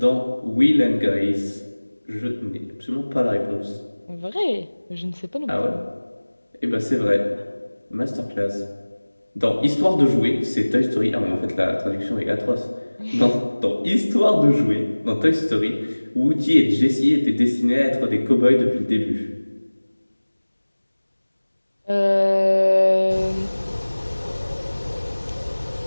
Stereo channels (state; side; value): inverted; both; correlation -1.00